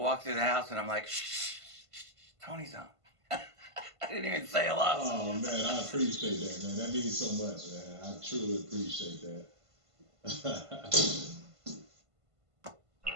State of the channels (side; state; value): left; late; 1.5 ms